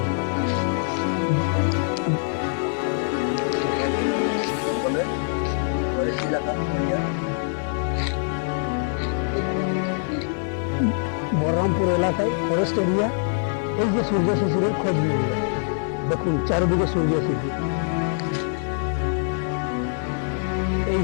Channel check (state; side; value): silent; right; 63 dB below the other